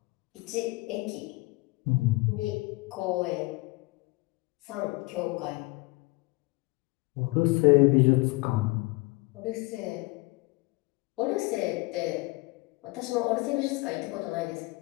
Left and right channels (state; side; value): quieter; right; 24.2 dB